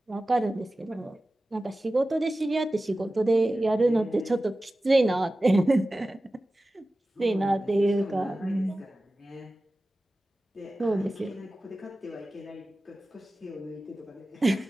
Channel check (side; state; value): both; normal; correlation 0.96